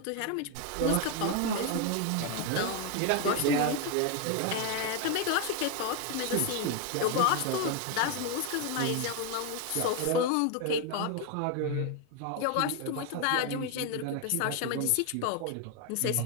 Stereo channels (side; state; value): both; different; correlation 0.01